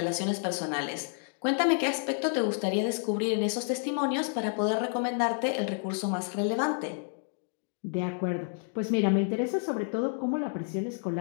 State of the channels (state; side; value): silent; right; 58 dB below the other